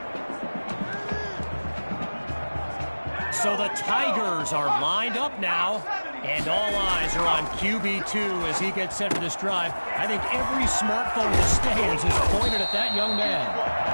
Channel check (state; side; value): inverted; both; correlation -1.00